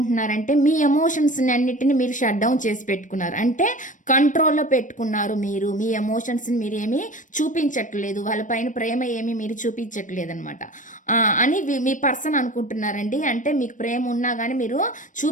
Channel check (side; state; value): right; late; 0.37 ms